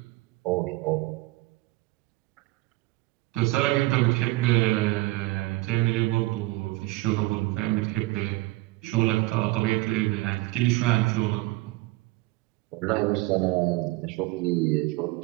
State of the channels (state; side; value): quieter; left; 19.8 dB